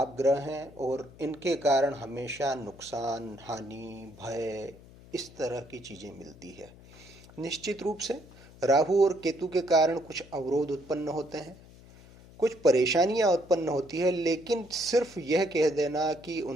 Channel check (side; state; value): left; noise; hum, 22 dB below the sound